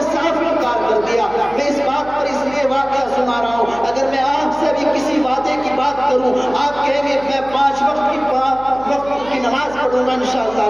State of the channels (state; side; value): noise; right; hum, 18 dB below the sound